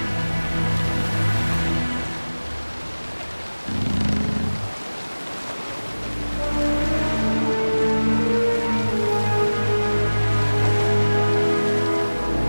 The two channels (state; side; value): inverted; both; correlation -1.00